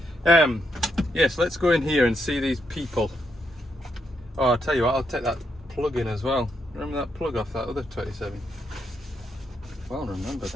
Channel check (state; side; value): normal; both; correlation 0.79